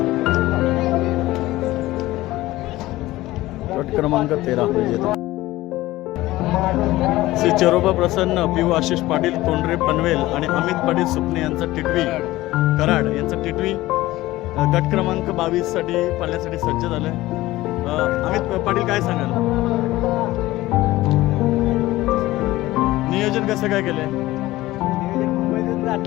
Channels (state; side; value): quieter; right; 17.4 dB